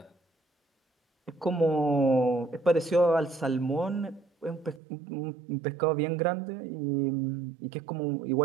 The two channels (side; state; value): left; drops out; at 4.8 s